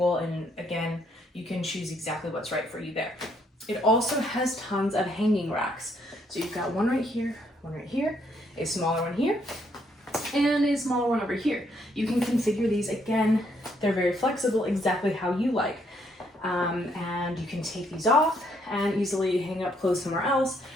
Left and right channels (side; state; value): both; normal; correlation 0.71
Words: And again, you can choose exactly what's right for you there. It also has tons of hanging racks. So you've got one right here, a smaller one here, and a smaller one over here. You can configure these, again, they're very flexible, exactly how you like. And you can take these off and easily hang up clothes somewhere else,